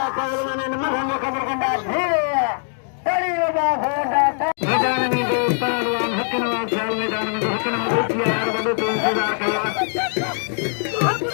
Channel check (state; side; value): silent; right; 60 dB below the other